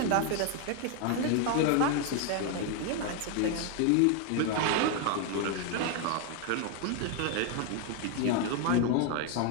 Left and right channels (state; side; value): different; both; correlation 0.01